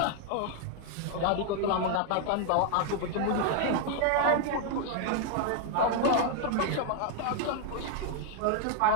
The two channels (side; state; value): both; different; correlation 0.00